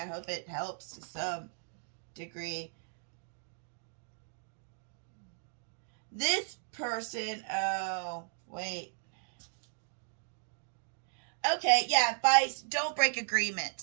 hope it helps to some degree. This person, oh, wait. Okay, yeah, advice, don't break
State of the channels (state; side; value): silent; left; digital silence